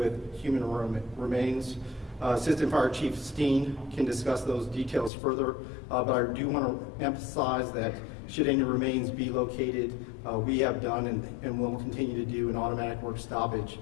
human remains. Assistant Fire Chief Steen can discuss those details further, but I do want to emphasize that Should any remains be located, we have done and will continue to do an automatic work stoppage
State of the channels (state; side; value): drops out; right; at 5.1 s